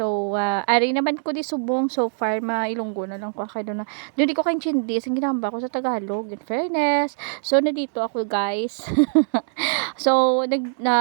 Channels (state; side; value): silent; left; digital silence